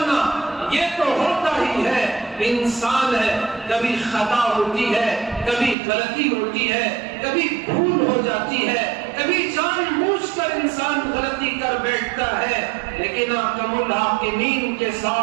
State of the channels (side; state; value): left; drops out; at 5.8 s